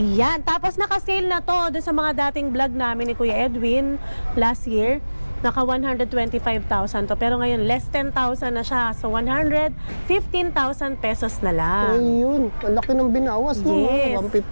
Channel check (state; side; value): inverted; both; correlation -1.00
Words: tapos naka-sale na to doon sa mga dating vlog namin ni Kuya Edwin last year. Naka 125,000 to. Pero ngayon, less 10,000 na siya. So, 115,000 pesos na lang. Ayun, ang laki ng binawas, no? Yes.